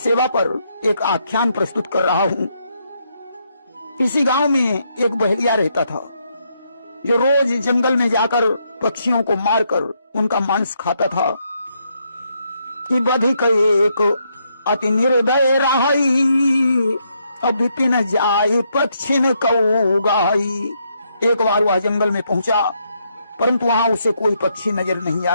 पर एक आख्यान प्रस्तुत कर रहा हूं। किसी गांव में एक बहेलिया रहता था, जो रोज जंगल में जाकर पक्षियों को मारकर उनका मांस खाता था। कि बधिक एक अति निर्दय रहाई, अब विपिन जाई पक्षिन कऊ गाई। एक बार वह जंगल में पहुंचा, परंतु वहां उसे कोई पक्षी नजर नहीं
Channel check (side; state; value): both; inverted; correlation -0.76